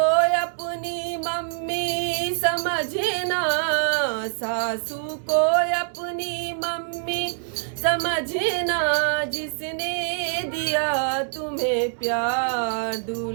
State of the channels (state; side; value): silent; left; digital silence